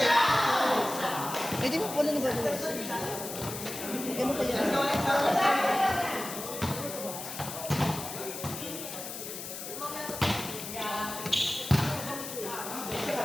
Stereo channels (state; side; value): noise; left; hiss, 8 dB below the sound